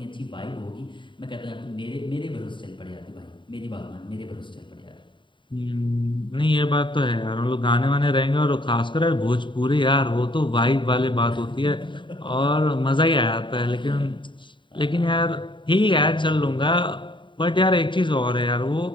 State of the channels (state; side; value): late; right; 0.23 ms